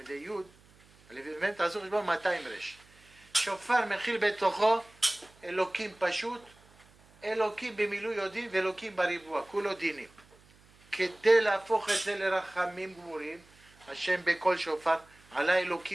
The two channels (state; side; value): noise; right; hum, 28 dB below the sound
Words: י', א', מ', תעשו חשבון 200 רש. שופר מכיל בתוכו אלוקים פשוט, אלוקים במילוי יהודים ואלוקים בריבוע, כולו דינים. כדי להפוך את זה לרחמים גמורים, השם בכל שופר, עלה